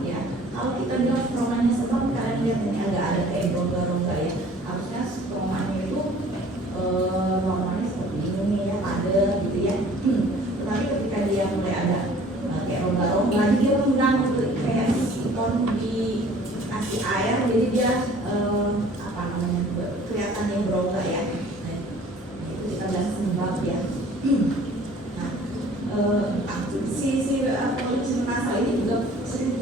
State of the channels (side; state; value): both; normal; correlation 0.51